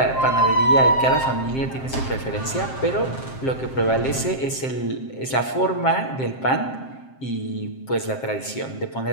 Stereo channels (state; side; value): late; right; 7.6 ms